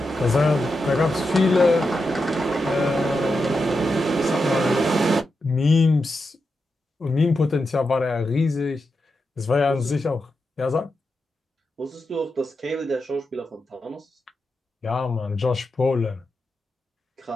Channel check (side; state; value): both; normal; correlation 0.87